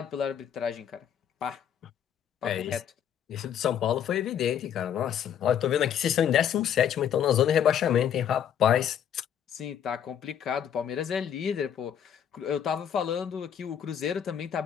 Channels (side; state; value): right; quieter; 9.1 dB